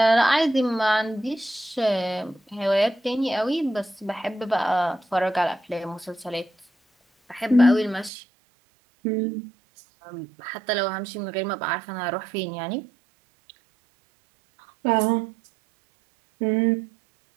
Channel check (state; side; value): drops out; left; at 8.1 s